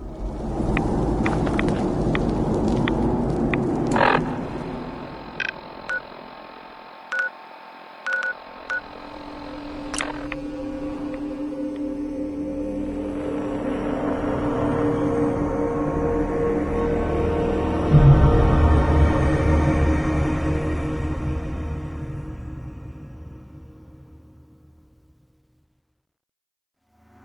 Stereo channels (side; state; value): both; identical; correlation 1.00